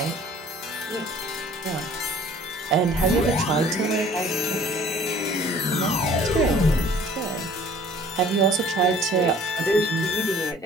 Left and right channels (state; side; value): normal; both; correlation 0.52